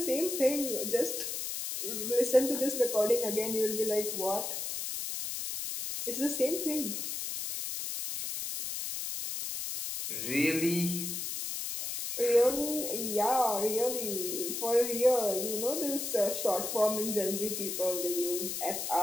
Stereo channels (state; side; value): noise; left; hiss, 4 dB below the sound